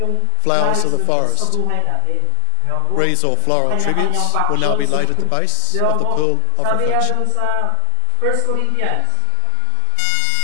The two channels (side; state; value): both; different; correlation 0.00